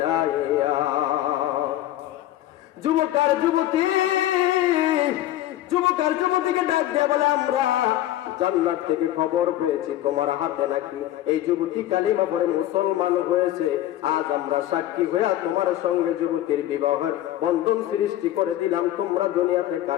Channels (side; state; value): right; quieter; 13.7 dB